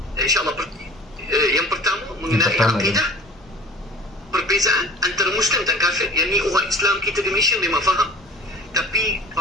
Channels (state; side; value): normal; both; correlation 0.44